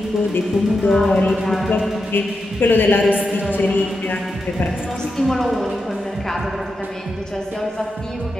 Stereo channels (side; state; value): both; normal; correlation 0.87